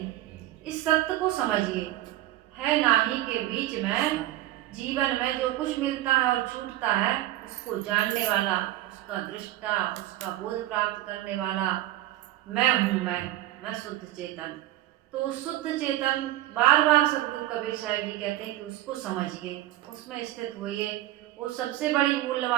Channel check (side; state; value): left; quieter; 14.9 dB